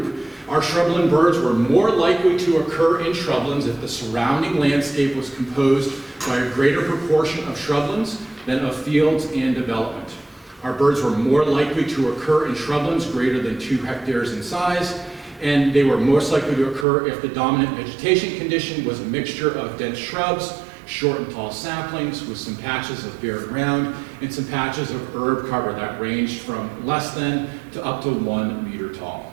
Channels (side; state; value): left; drops out; at 16.9 s